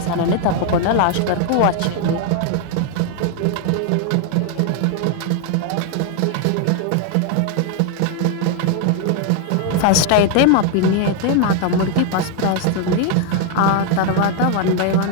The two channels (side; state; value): both; different; correlation 0.00